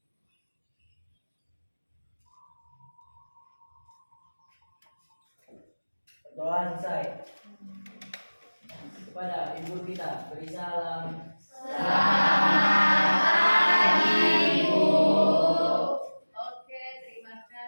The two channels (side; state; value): both; inverted; correlation -1.00